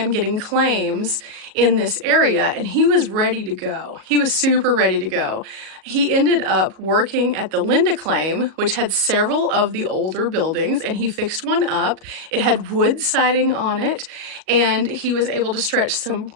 getting claims in this area and he was ready to go. He was super ready to go. He ended up working at the Linda claim, which had several of the older buildings, and he fixed one up. It had wood siding on it, and he was able to stretch some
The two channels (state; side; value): late; left; 38 ms